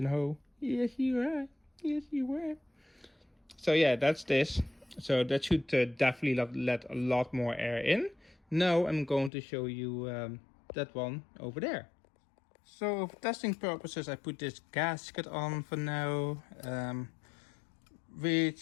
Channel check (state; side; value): drops out; right; at 9.3 s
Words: hole. Yes, you are. Yes, you were. So yeah, that's this. So that should definitely let a lot more air in. Now I'm going to show you that one over there. So for testing purposes, I put this gasket on for now,